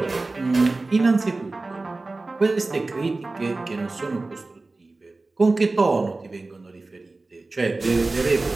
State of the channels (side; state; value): left; quieter; 3.3 dB